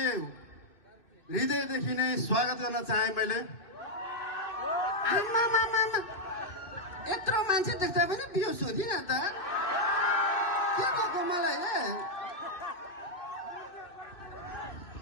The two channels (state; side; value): late; right; 2.6 ms